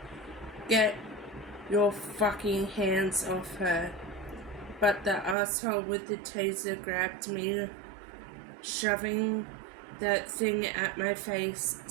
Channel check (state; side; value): drops out; left; at 5.4 s